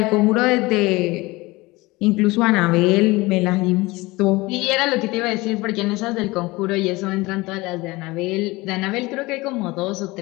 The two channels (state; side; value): quieter; right; 21.8 dB